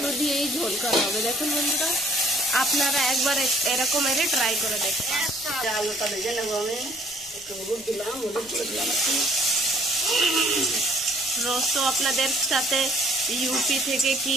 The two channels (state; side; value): noise; left; rumble, 26 dB below the sound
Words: দিয়েই ঝোল করা হবে। দেখুন বন্ধুরা আপনারা একবার এরকম এর ট্রাই করে দেখুন। আলুটা ভেজে নেবো, আমি একটু হলুদ দিলাম, হলুদ করে দিলাম একটু। রোজ তো আপনাদের সাথে ইউপি থেকে কি